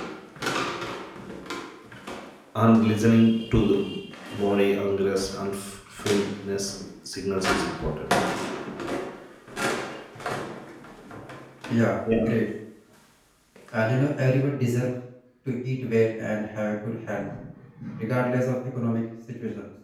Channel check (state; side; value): identical; both; correlation 1.00